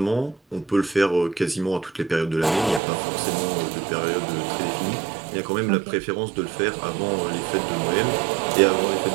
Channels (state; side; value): drops out; left; at 2.8 s